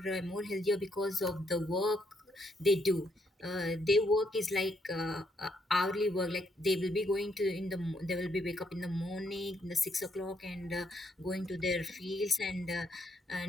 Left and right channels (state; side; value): normal; both; correlation 0.74